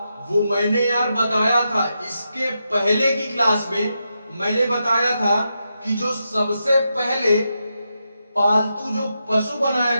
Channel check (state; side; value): inverted; both; correlation -0.86